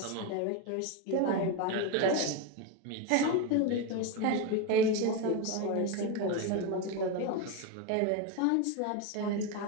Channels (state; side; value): different; both; correlation 0.03